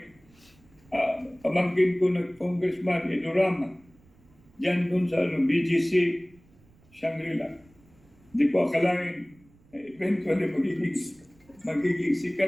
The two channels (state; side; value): noise; right; rumble, 29 dB below the sound